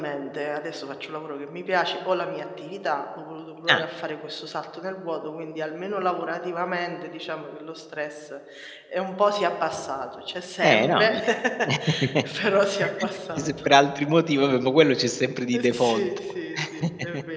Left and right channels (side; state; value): both; identical; correlation 1.00